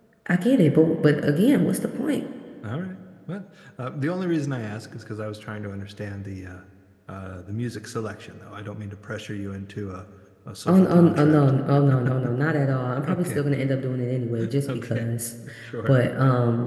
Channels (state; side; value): identical; both; correlation 1.00